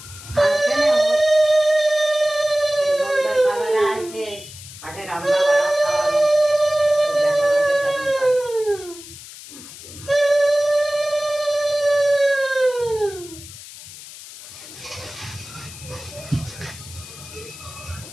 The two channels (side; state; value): left; noise; hiss, 16 dB below the sound